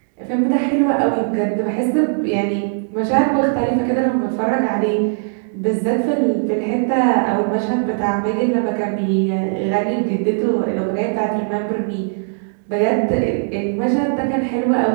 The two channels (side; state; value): left; silent; digital silence